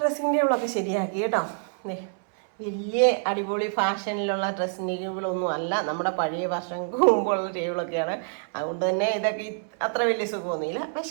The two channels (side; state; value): left; silent; 61 dB below the other